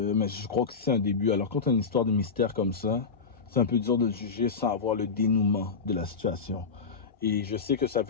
je crois que c'est un début. Alors, quand on a une histoire de mystère comme ça, c'est un peu dur de le juger sans avoir le dénouement de la situation. Et je sais que ça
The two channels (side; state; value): right; quieter; 5.2 dB